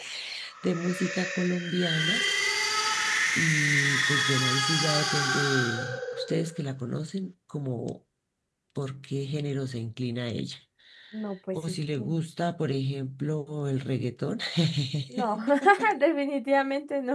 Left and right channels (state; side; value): identical; both; correlation 1.00